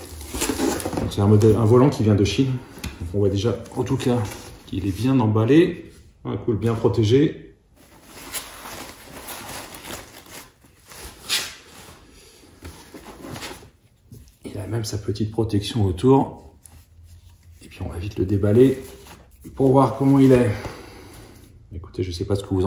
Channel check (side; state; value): both; identical; correlation 1.00